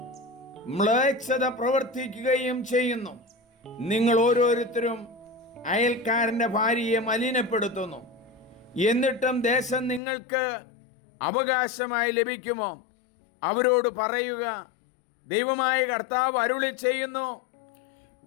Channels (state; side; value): drops out; right; at 10.0 s